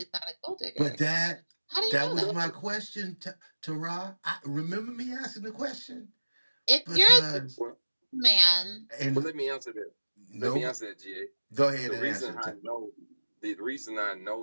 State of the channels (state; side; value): inverted; both; correlation -1.00